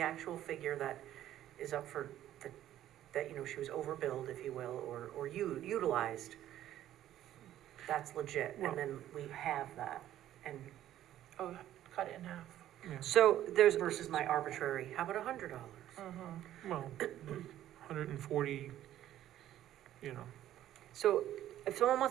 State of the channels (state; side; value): quieter; left; 12.5 dB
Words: actual figure that is up for, that, you know, she was overbilled, if you will, or utilized, that's legit, Well- and then we have that, and Oh, cut it in half. So there's. versus my arbitrary, how about $100? Well, 140, you know. So if someone